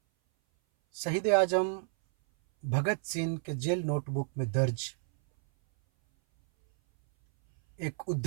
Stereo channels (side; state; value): left; silent; 58 dB below the other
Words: शहीद आजम भगत सिंह के जेल नोटबुक में दर्ज एक